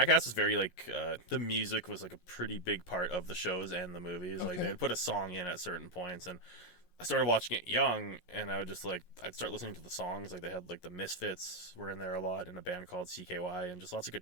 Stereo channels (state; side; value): late; right; 11 ms